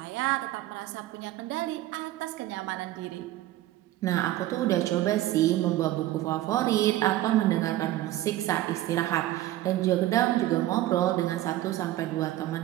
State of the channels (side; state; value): left; quieter; 15.0 dB